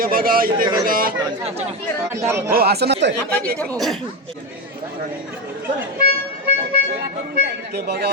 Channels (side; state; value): both; normal; correlation 0.14